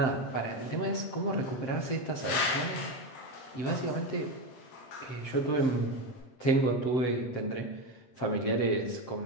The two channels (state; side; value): late; right; 7.7 ms